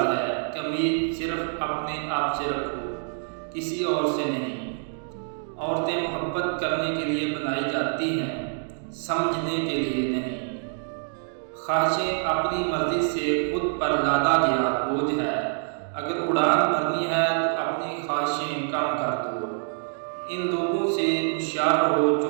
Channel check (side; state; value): left; silent; digital silence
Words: ہے کہ امید صرف اپنے آپ سے رکھو، کسی اور سے نہیں۔ عورتیں محبت کرنے کے لیے بنائی جاتی ہیں، سمجھنے کے لیے نہیں۔ خواہشیں اپنی مرضی سے خود پر لادا گیا بوجھ ہے۔ اگر اڑان بھرنی ہے تو اپنی خواہشیں کم کر دو۔ ان لوگوں سے ہوشیار رہو جو